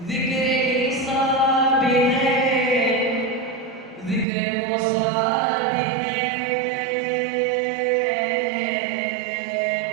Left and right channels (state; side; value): drops out; left; at 4.2 s